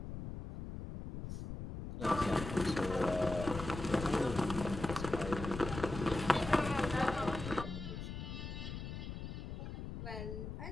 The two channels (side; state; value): left; noise; rumble, 7 dB below the sound